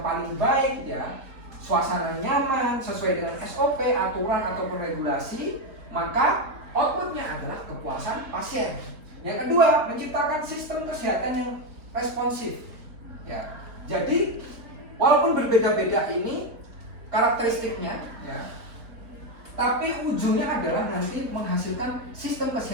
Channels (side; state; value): left; late; 3.8 ms